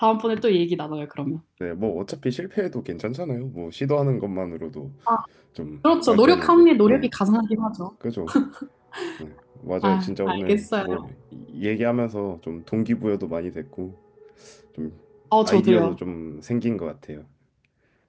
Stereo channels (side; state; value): both; identical; correlation 1.00